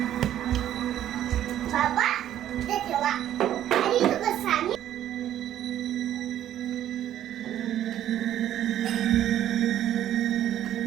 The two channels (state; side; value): quieter; left; 11.6 dB